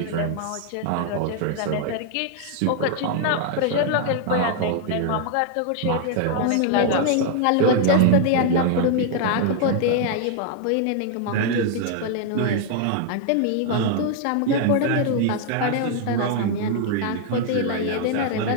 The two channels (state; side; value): different; both; correlation 0.00